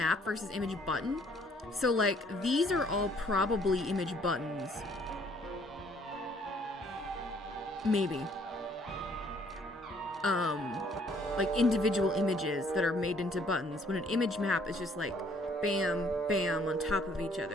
versus image button. So, like, these are all probably image buttons. Maybe. Like individual images that are made into buttons. When an image map is just like, bam, bam, on top of each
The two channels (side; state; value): both; normal; correlation 0.62